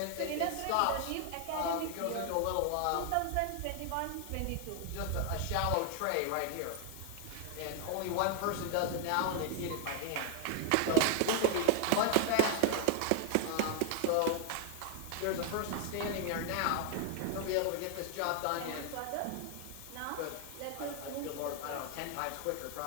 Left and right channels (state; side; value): different; both; correlation 0.00